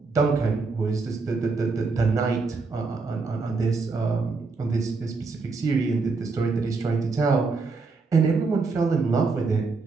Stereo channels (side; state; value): left; quieter; 4.1 dB